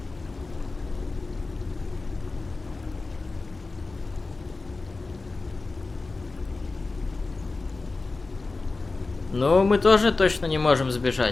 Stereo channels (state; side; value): quieter; right; 3.6 dB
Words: Ну, мы тоже точно не можем